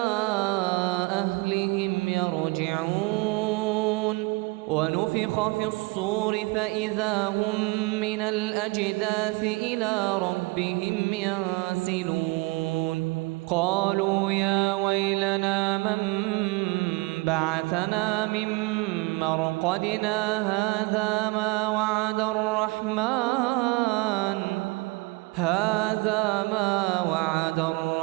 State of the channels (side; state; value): left; quieter; 25.5 dB